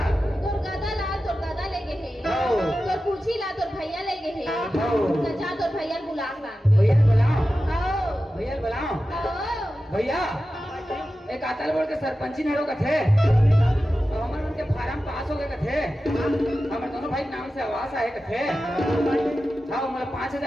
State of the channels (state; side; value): normal; both; correlation 0.93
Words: तोर गदा ला तोर गदा ले गए है आओ। तोर पूछी ला तोर भैया ले गए है आओ। तो जा तोर भैया बुला ला भैया बुलाओ आओ भैया बुलाओ आओ भैया एक आतल बोल के सरपंची नहरों का थे और हमारे उनके फार्म पास हो गए का थे हमारे दोनों भाई नाम से आवास आए का थे हाँ मतलब